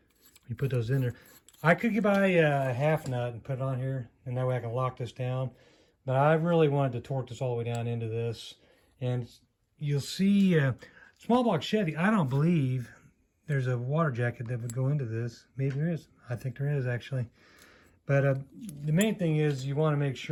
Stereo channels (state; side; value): identical; both; correlation 1.00